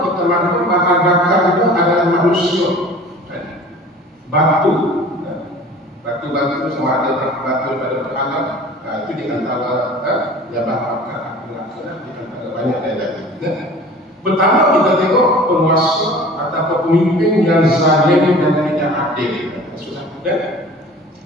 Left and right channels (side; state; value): both; normal; correlation 0.44